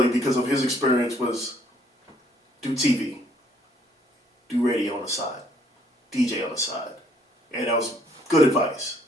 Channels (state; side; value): normal; both; correlation 0.64